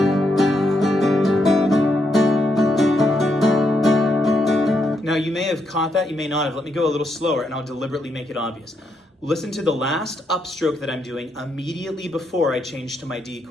Now, you may have caught that, you may not have. Let me go a little slower and I'll deliberately make it obvious. Listen to the last upstroke that I'm doing immediately before I change to my D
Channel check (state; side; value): normal; both; correlation 0.79